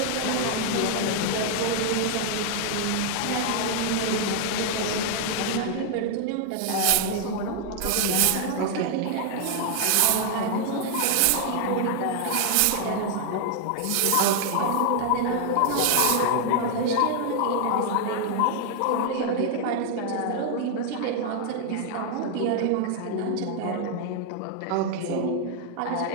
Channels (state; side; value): different; both; correlation 0.00